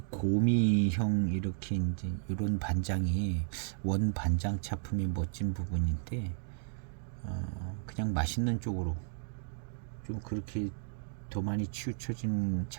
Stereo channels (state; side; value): silent; left; 55 dB below the other